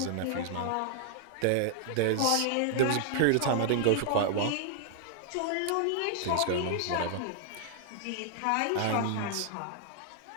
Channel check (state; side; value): different; both; correlation 0.00